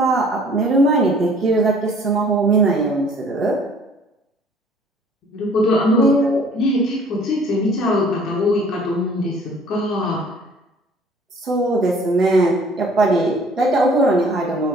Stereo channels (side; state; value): both; normal; correlation 0.54